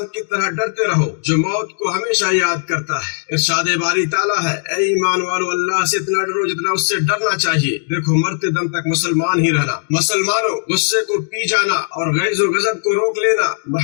کی طرح ڈرتے رہو جو موت کو ہمیشہ یاد کرتا ہے۔ ارشاد باری تعالیٰ ہے، اے ایمان والو، اللہ سے اتنا ڈرو جتنا اس سے ڈرنا چاہیے۔ دیکھو، مرتے دم تک مسلمان ہی رہنا۔ مسلمانوں، غصے کو پی جانا اور غیظ و غضب کو روک لینا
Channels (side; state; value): right; silent; digital silence